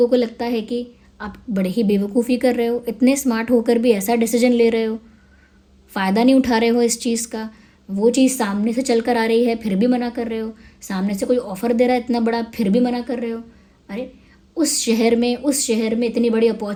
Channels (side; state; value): both; identical; correlation 1.00